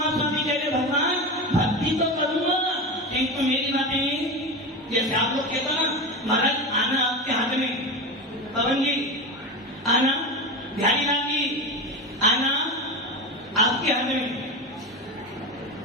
स्वामी कह रहे भगवान भक्ति तो करूंगा, किंतु मेरी बातें जैसे आप लोग कहते ना महाराज आना आपके हाथ में, पवन जी आना, बिहारी लाल जी आना आपके हाथ में,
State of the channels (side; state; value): both; normal; correlation 0.23